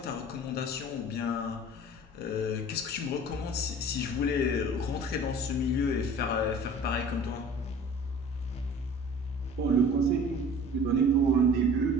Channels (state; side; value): normal; both; correlation 0.44